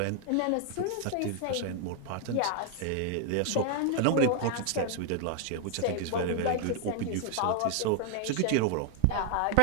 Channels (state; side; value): different; both; correlation 0.00